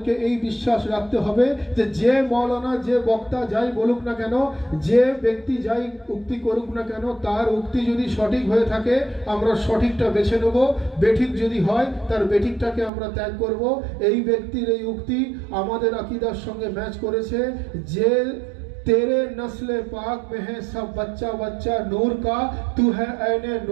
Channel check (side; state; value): left; drops out; at 12.9 s